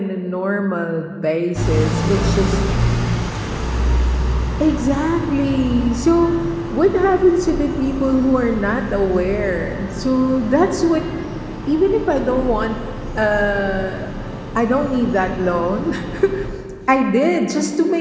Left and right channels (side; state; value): both; identical; correlation 1.00